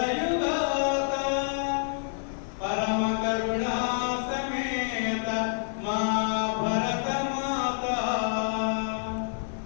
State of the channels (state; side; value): silent; right; digital silence